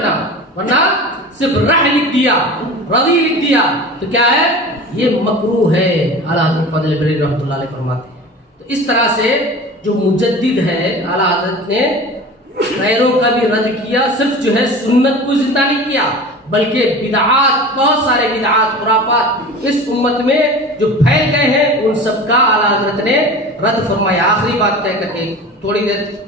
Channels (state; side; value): normal; both; correlation 0.36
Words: ورنہ صرف رح لکھ دیا، رضی لکھ دیا تو کیا ہے، یہ مکروہ ہے. اعلیٰ حضرت فضل بریلوی رحمۃ اللہ علیہ فرماتے ہیں. تو اس طرح سے جو مجدد ہے اعلیٰ حضرت نے غیروں کا بھی رد کیا، صرف جو ہے سنت کو زندہ نہیں کیا بلکہ بدعات، بہت سارے بدعات خرافات اس امت میں جو پھیل گئے ہیں ان سب کا اعلیٰ حضرت نے رد فرمایا. آخری بات کہہ کر کے تھوڑی دیر